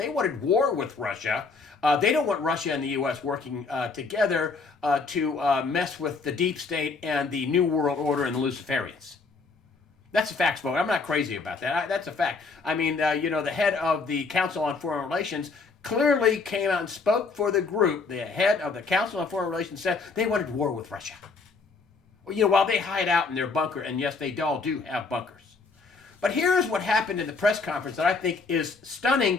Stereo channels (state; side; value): quieter; right; 4.3 dB